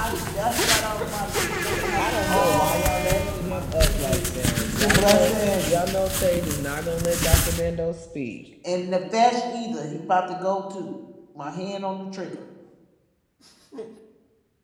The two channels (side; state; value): both; identical; correlation 1.00